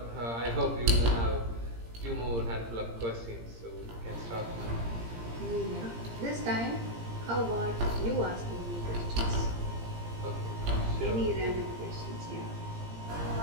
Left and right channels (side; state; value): left; late; 17 ms